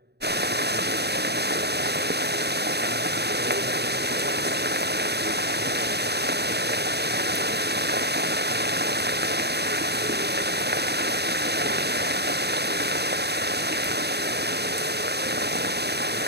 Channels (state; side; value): late; left; 0.48 ms